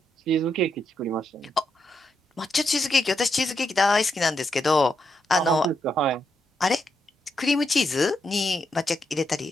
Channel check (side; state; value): both; normal; correlation 0.81